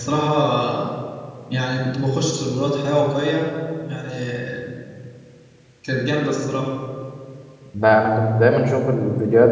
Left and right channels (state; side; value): identical; both; correlation 1.00